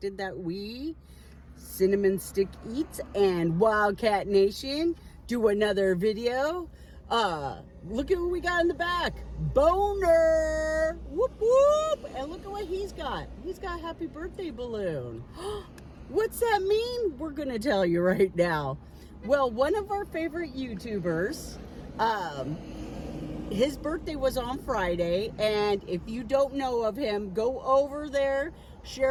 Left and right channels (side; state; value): both; identical; correlation 1.00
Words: that we, Cinnamon Stick Eats and WildKat-Nation, do another video. Look at what we got in the back. Boner! Whoop whoop! And look at what he's got. He's got a happy birthday balloon. What's that mean? We're gonna tell you right now. Well, one of our favorite YouTubers, his birthday was on Friday, and if you don't know of him, go over there,